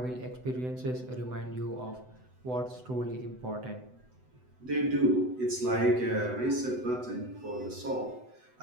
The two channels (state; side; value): late; left; 7.9 ms